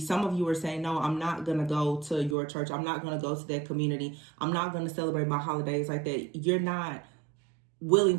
of you are saying, no, I'm not going to go to your church. I'm not going to go to that community. I'm not going to celebrate my holidays like that. You're not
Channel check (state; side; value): drops out; left; at 2.4 s